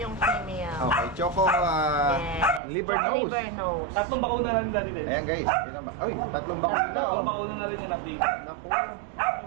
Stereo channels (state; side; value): drops out; left; at 2.6 s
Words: female. Okay, Choco Yes. liver nose. Liver nose. Tatlong bakuna na rin dati din. Ayan guys. Yun naman. Uy, tatlong bakuna. Tatlong Oh. bakuna na rin yung update. Naku.